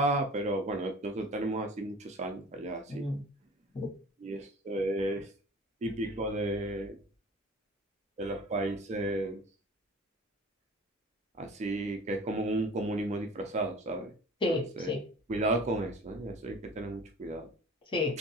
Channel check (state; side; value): normal; both; correlation 0.43